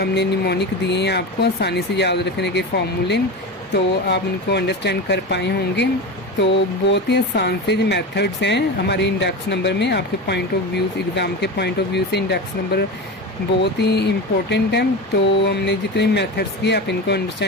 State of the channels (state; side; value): normal; both; correlation 0.24